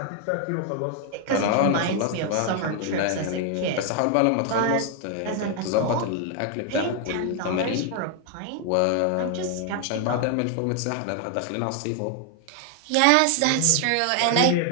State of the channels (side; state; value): both; different; correlation 0.00